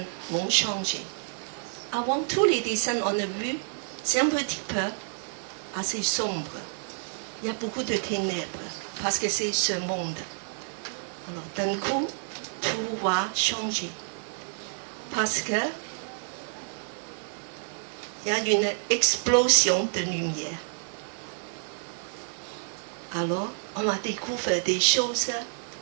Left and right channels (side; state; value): left; silent; 59 dB below the other